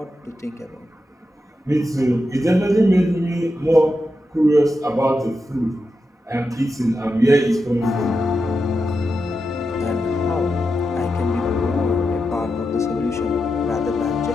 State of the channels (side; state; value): both; normal; correlation 0.88